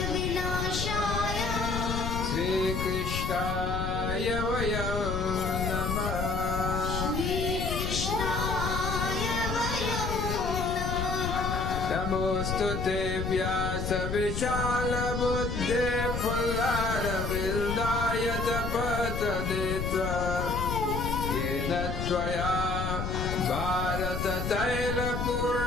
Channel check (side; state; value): left; noise; rumble, 3 dB below the sound